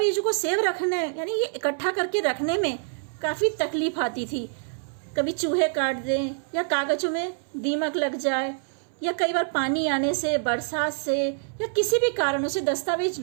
को सेव रखने यानी ये इकट्ठा करके रखने में काफी तकलीफ आती थी। कभी चूहे काट दें या कागजों में दीमक लग जाए या कई बार पानी आने से, बरसात से या किसी भी कारणों से दस्तावेज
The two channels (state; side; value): silent; left; 61 dB below the other